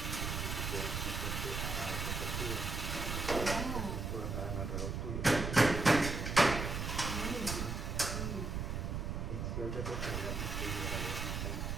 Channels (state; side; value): noise; right; rumble, 2 dB below the sound